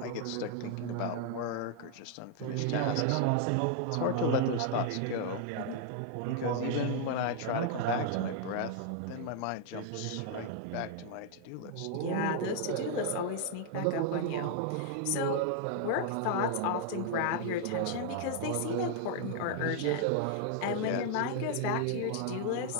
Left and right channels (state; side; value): different; both; correlation 0.00